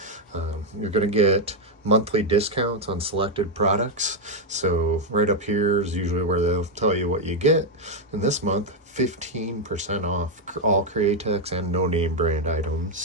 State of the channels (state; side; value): normal; both; correlation 0.02